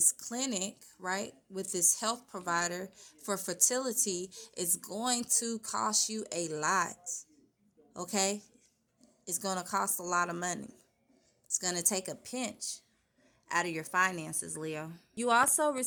clinic, right? With this health provider for fertility is going to cost you a lot, okay? It's going to cost a lot of money. It's going to take a pinch out of your finances, Leo. You also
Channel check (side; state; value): both; identical; correlation 1.00